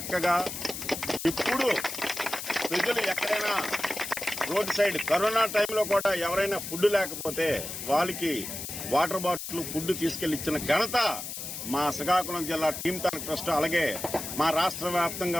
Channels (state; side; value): noise; left; hiss, 7 dB below the sound